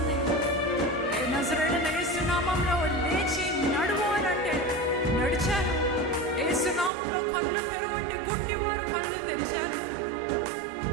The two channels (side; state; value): left; drops out; at 6.9 s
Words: నజరేయుడైన యేసు నామంలో లేచి నడువు అని అంటే నడిచాను. యేసు నామంలో కళ్ళు తెరువు అంటే గుడ్డివారు కళ్ళు తెరిచారు.